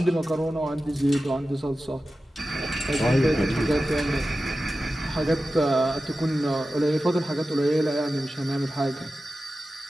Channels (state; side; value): normal; both; correlation 0.94